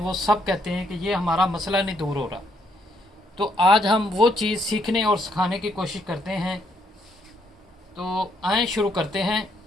सब कहते हैं कि ये हमारा मसला नहीं दूर हो रहा। तो आज हम वो चीज़ सीखने और सिखाने की कोशिश करते हैं। तो आए शुरू करते हैं।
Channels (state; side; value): normal; both; correlation 0.72